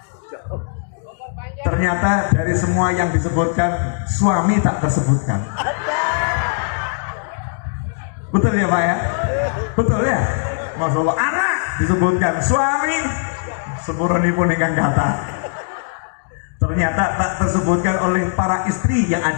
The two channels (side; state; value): right; silent; digital silence